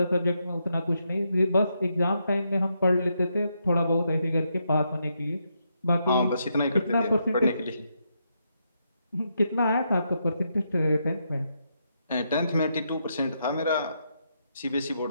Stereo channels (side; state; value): both; inverted; correlation -0.80